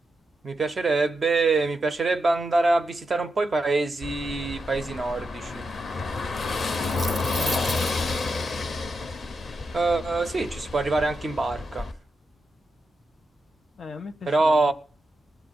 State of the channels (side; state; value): both; normal; correlation 0.87